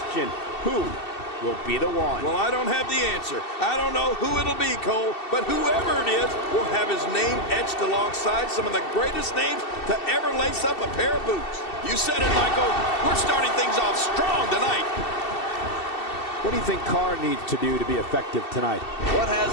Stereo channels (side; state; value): right; late; 2.7 ms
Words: Who will be the one? Well, I don't have the answer. I don't know who it'll be, Cole, but whoever it is will have his name etched alongside some of the greatest names to ever lace up a pair of boots. You said it, Michael. We're starting things off strong tonight. What do you think Carr needs to do to be effective tonight? What